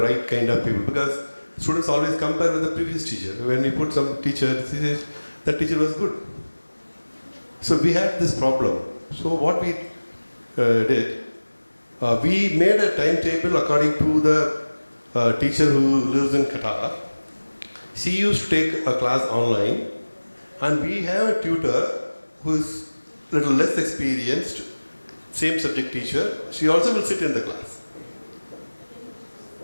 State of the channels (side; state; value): both; inverted; correlation -1.00